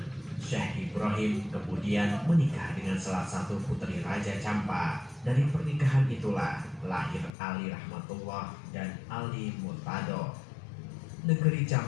Syekh Ibrahim kemudian menikah dengan salah satu putri Raja Champa. Dari pernikahan itulah lahir Ali Rahmatullah dan Ali Murtado. Negeri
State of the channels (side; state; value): right; drops out; at 7.3 s